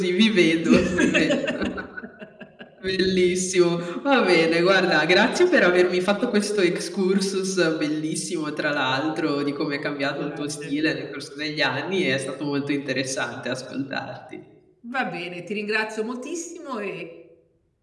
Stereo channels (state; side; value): identical; both; correlation 1.00